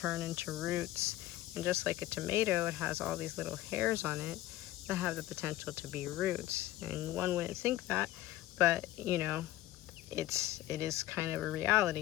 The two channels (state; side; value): quieter; right; 15.6 dB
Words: into roots. And just like a tomato, it has all these little hairs on it that have the potential to be roots. And one wouldn't think that, but you know, it is kind of a